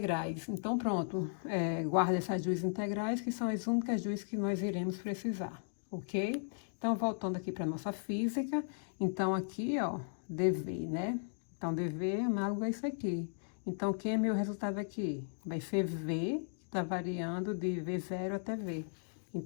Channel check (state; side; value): silent; right; digital silence